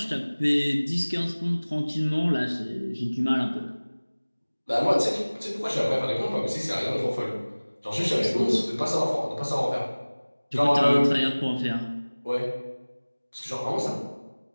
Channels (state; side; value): inverted; both; correlation -1.00